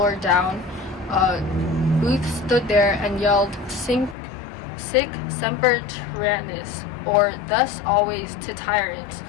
down, Booth stood there and yelled, Sic semper tyrannis, or thus always to tyrants,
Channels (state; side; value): drops out; right; at 4.2 s